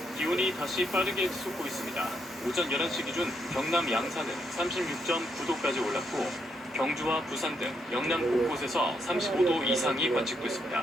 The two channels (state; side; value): normal; both; correlation 0.77